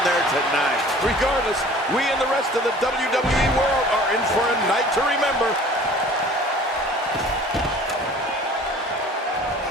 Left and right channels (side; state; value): both; normal; correlation 0.47